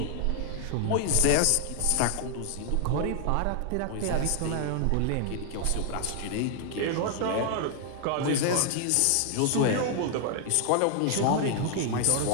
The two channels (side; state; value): both; different; correlation 0.00